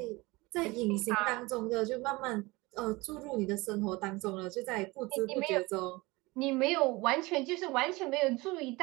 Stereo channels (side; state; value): left; quieter; 22.8 dB